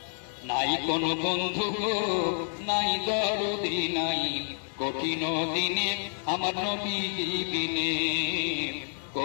নাই কোনো বন্ধু গো, নাই দরদি নাই, কঠিন দিনে আমার নবীজি বিনে,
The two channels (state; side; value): silent; right; 59 dB below the other